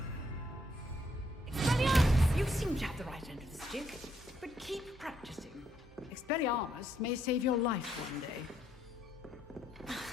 Expelliarmus! You seem to have the right end of the stick, but keep practicing. Expelliarmus may save your life one day.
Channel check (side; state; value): both; normal; correlation 0.73